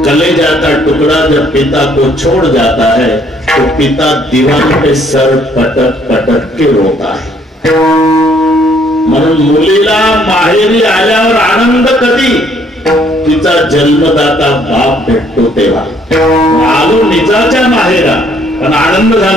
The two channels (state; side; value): normal; both; correlation 0.64